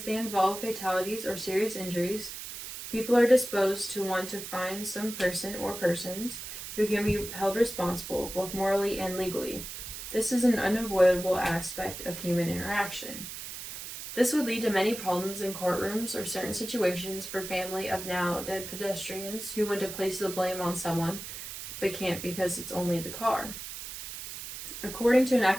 they involve fatalities or serious injuries, people are disposed to want to find some person or persons who can be held responsible, both morally and legally. This is an unavoidable aspect of human interaction. This would lead to many problems in courtrooms or certain situations for family of now dead pedestrians who want to place the blame on someone, but can't because it's only the car. According to an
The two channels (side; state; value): right; noise; hiss, 9 dB below the sound